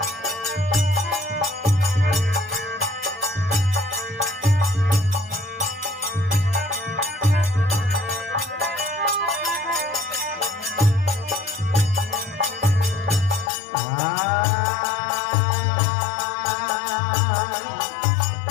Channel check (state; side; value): drops out; right; at 13.5 s